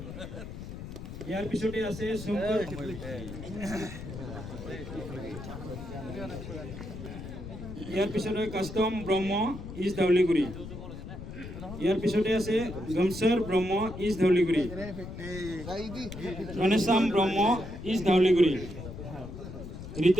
ইয়াৰ পিছতে আছে শংকৰ ইয়াৰ পিছতে কাষ্টম ব্ৰহ্ম ইষ্ট ধৌলিগুৰি ইয়াৰ পিছতে আছে গমছৰ ব্ৰহ্ম ইষ্ট ধৌলিগুৰি গণেশাম ব্ৰহ্ম ইষ্ট ধৌলিগুৰি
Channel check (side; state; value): left; noise; rumble, 10 dB below the sound